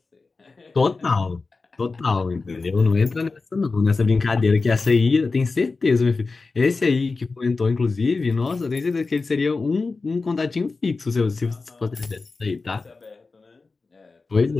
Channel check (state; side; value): quieter; right; 4.0 dB